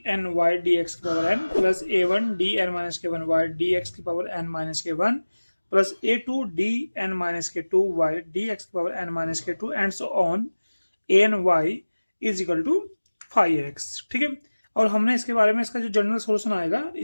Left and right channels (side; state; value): both; inverted; correlation -1.00